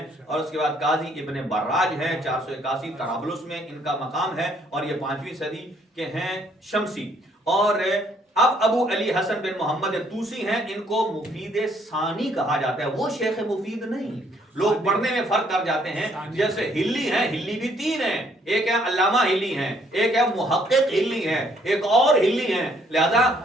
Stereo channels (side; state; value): both; normal; correlation 0.66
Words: اور اس کے بعد قاضی ابن براج ہیں، 481 طرابلس میں ان کا مقام ہے، اور یہ 5ویں صدی کے ہیں شمسی۔ اور اب ابو علی حسن بن محمد طوسی ہیں، ان کو مفید ثانی کہا جاتا ہے، وہ شیخ مفید نہیں، لوگ پڑھنے میں فرق کر جاتے ہیں۔ جیسے ہلی ہیں، ہلی بھی 3 ہیں، ایک ہے علامہ ہلی ہیں، ایک ہے محقق ہلی ہیں، ایک اور ہلی ہیں، لہذا